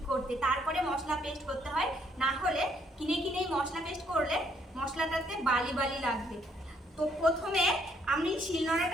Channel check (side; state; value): both; normal; correlation 0.69